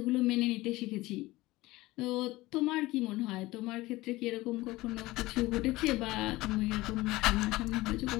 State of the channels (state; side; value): quieter; right; 19.2 dB